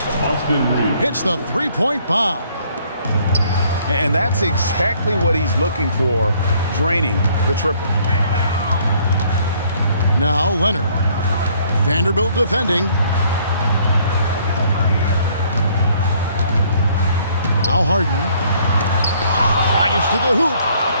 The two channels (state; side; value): inverted; both; correlation -0.62